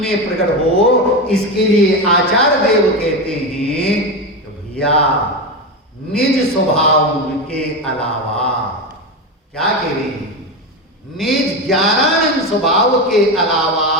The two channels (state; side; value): normal; both; correlation 0.17